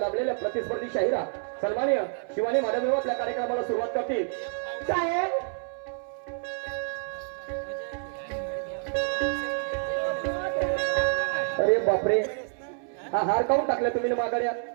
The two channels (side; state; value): left; silent; 59 dB below the other